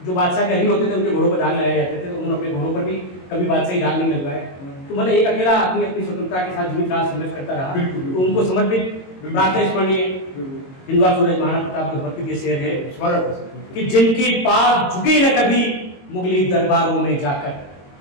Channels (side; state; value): right; late; 22 ms